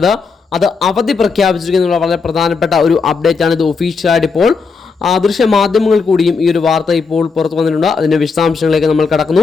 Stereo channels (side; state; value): right; quieter; 4.9 dB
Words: അത് അവധി പ്രഖ്യാപിച്ചിരിക്കുന്ന വളരെ പ്രധാനപ്പെട്ട ഒരു അപ്ഡേറ്റ് ആണ്. ഇത് ഒഫീഷ്യലായിട്ട് ഇപ്പോൾ ദൃശ്യ മാധ്യമങ്ങൾ കൂടിയും ഈ ഒരു വാർത്ത ഇപ്പോൾ പുറത്തു വന്നിട്ടുണ്ട്. അതിന്റെ വിശദാംശങ്ങളിലേക്ക് നമ്മൾ